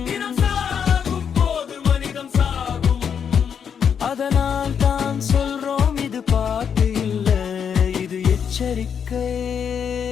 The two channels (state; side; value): quieter; right; 7.4 dB